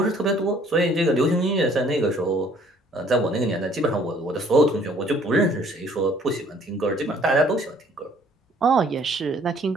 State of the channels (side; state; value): both; normal; correlation 0.59